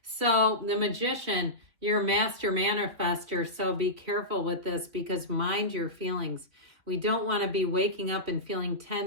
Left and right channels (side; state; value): left; late; 3.2 ms